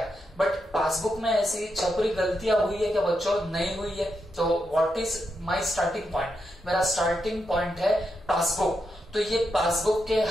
बट पासबुक में ऐसी छपरी गलतियां हुई है क्या बच्चों, नहीं हुई है। तो what is my starting point, मेरा स्टार्टिंग पॉइंट है पासबुक। तो ये पासबुक के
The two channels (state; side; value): normal; both; correlation 0.84